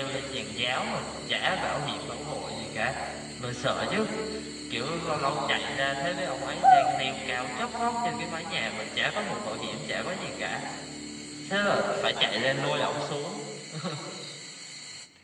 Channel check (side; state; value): both; identical; correlation 1.00